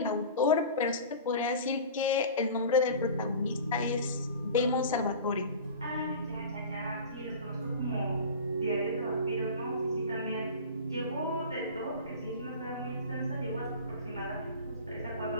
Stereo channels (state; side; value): inverted; both; correlation -0.36